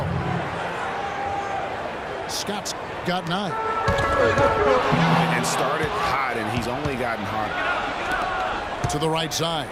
Scott's got 9. And started hot, and he's only gotten hotter. To the right side.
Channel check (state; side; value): identical; both; correlation 1.00